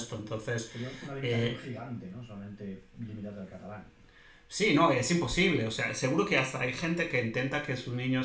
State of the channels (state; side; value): identical; both; correlation 1.00